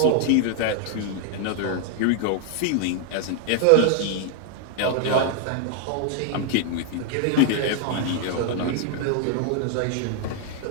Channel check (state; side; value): different; both; correlation 0.00